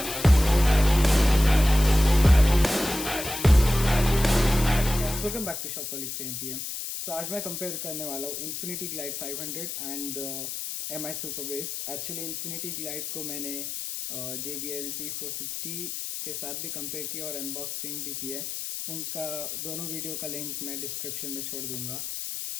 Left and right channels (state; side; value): noise; left; hiss, 6 dB below the sound